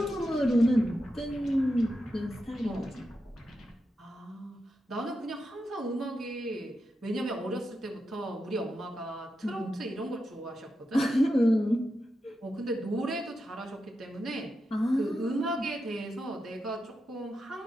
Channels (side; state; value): both; normal; correlation 0.88